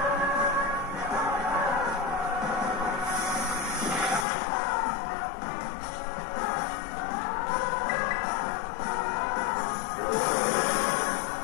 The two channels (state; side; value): drops out; right; at 4.2 s